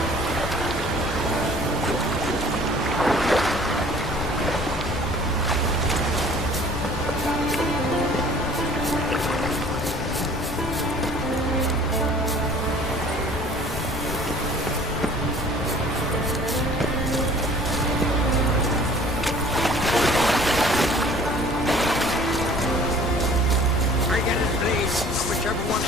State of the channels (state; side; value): noise; left; rumble, 9 dB below the sound